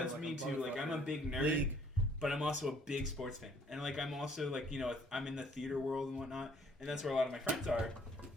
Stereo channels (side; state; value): both; normal; correlation 0.61